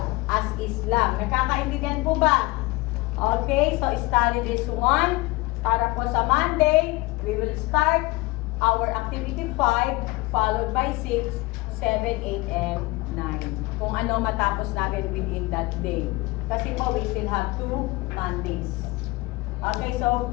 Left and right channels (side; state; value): right; quieter; 22.3 dB